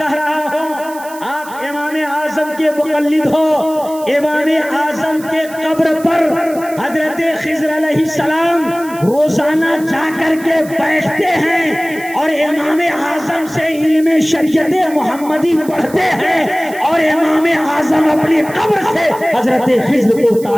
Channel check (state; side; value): noise; right; hiss, 18 dB below the sound